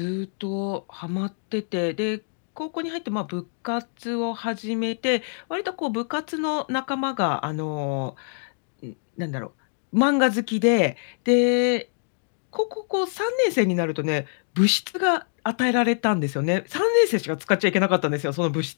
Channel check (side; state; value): right; silent; digital silence